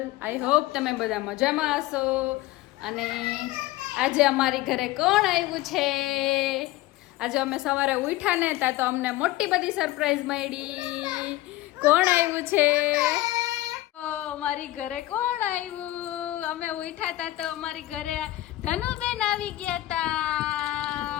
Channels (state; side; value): quieter; right; 16.6 dB